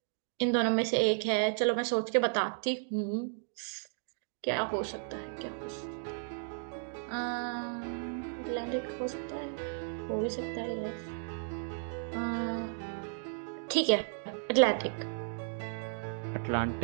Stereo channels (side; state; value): left; silent; digital silence